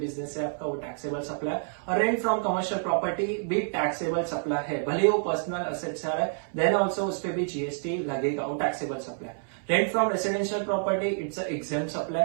से आपका वो टैक्सेबल सप्लाई, और रेंट फ्रॉम कमर्शियल प्रॉपर्टी भी टैक्सेबल सप्लाई है, भले वो पर्सनल असेट से आ रहा है, देन ऑल्सो उस पर भी जीएसटी लगेगा, वो taxable supply. Rent from residential property, it's an exempt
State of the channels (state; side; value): silent; left; 59 dB below the other